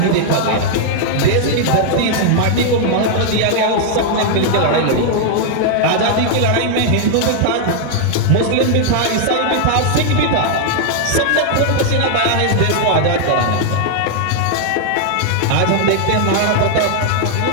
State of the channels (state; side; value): different; both; correlation 0.00